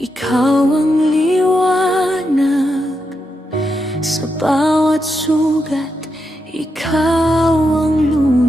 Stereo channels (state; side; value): normal; both; correlation 0.85